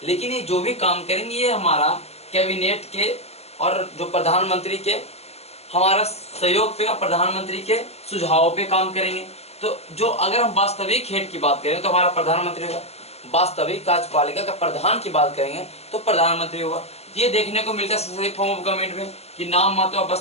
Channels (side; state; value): right; late; 0.30 ms